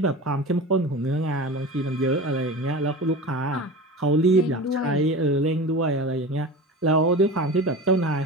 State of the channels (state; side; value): normal; both; correlation 0.32